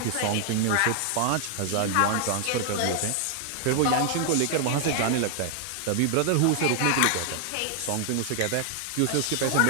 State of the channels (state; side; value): different; both; correlation 0.00